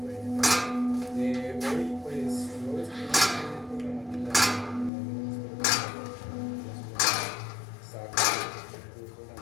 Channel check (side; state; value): right; drops out; at 4.9 s